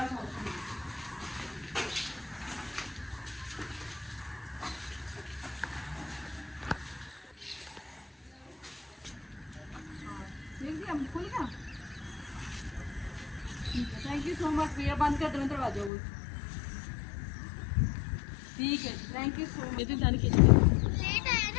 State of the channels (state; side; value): drops out; right; at 15.9 s